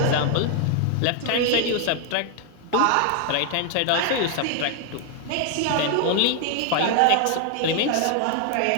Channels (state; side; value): different; both; correlation 0.00